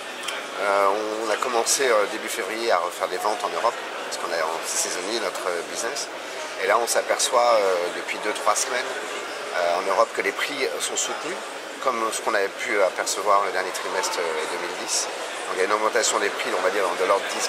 On a commencé début février à refaire des ventes en Europe, parce qu'on c'est saisonnier notre business. Et là on s'aperçoit depuis 2-3 semaines en Europe que les prix sont soutenus, comme ce qu'on avait pu apercevoir le dernier trimestre 2010. Donc il y a une augmentation des prix, on va dire, de l'ordre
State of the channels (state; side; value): identical; both; correlation 1.00